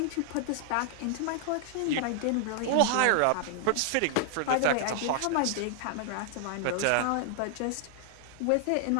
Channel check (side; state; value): both; different; correlation 0.00